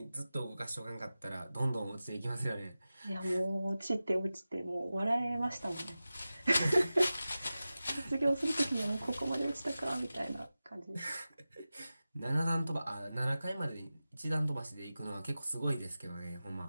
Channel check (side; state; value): both; inverted; correlation -0.95